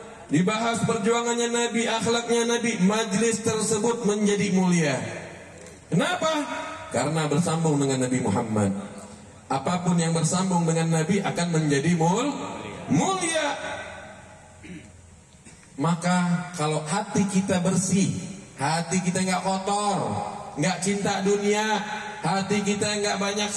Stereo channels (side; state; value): both; identical; correlation 1.00